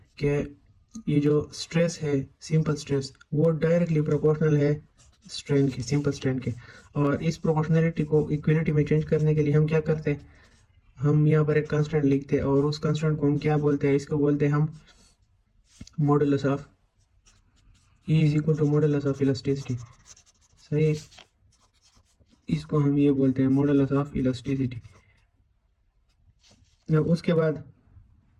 कि ये जो स्ट्रेस है, सिंपल स्ट्रेस, वो डायरेक्टली प्रोपोर्शनल है स्ट्रेन के, सिंपल स्ट्रेन के। और इस प्रोपोर्शनलिटी को इक्विलिटी में चेंज करने के लिए हम क्या करते हैं? हम यहाँ पर एक कांस्टेंट लिखते हैं, और उस कांस्टेंट को हम क्या बोलते हैं? इसको बोलते हैं हम modulus of E is equal to modulus of elasticity, सही है। इसको हम ये बोलते हैं मॉडुलस ऑफ इलास्टिसिटी। उसके बाद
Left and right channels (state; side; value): identical; both; correlation 1.00